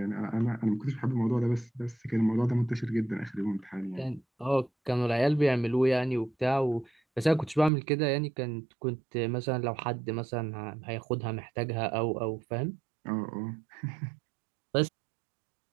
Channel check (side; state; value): left; drops out; at 7.7 s